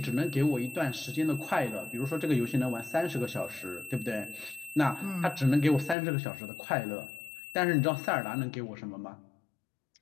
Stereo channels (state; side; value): drops out; right; at 6.0 s